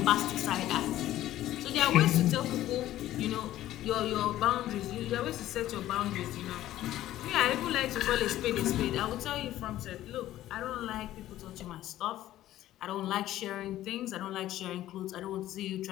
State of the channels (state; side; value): quieter; right; 13.9 dB